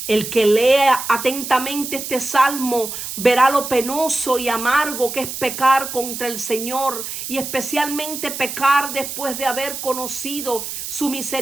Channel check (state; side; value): noise; right; hiss, 7 dB below the sound